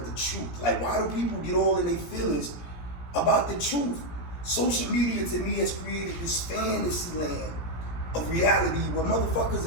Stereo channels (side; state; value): right; late; 17 ms